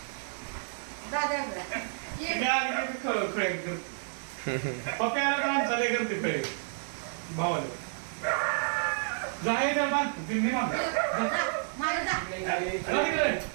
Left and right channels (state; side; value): silent; left; 58 dB below the other